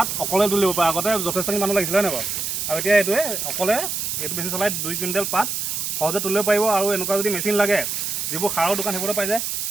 অকলে তুলিব পাৰে। আগতে যথেষ্টখিনি মানুহ লাগিছিলে হয় নাই বাৰু? আৰু এতিয়া এইটোৱে অকলে এইটো মেচিন চলাই 2 কুইণ্টেল পাত সহজে তুলিব পাৰিব। আৰু এনেকুৱা যদি মেচিন লাগে যিবোৰ সাৰৰ দোকান সেইবোৰতে পাই যায়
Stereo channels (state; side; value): noise; right; hiss, 2 dB below the sound